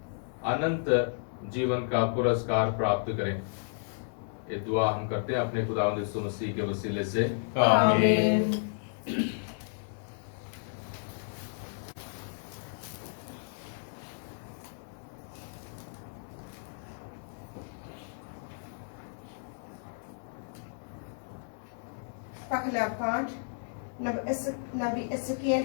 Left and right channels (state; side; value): silent; right; 56 dB below the other